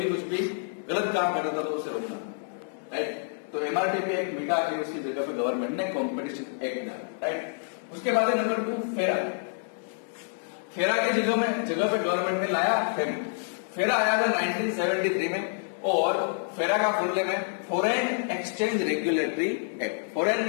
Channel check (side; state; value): right; silent; 59 dB below the other